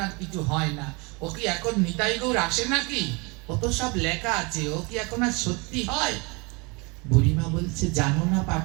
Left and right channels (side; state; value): left; quieter; 28.6 dB